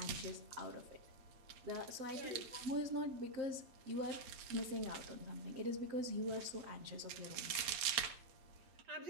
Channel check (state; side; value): late; left; 8.6 ms